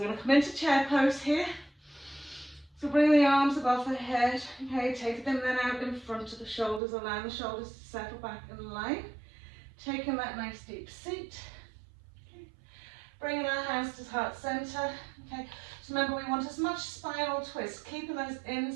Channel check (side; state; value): left; drops out; at 6.8 s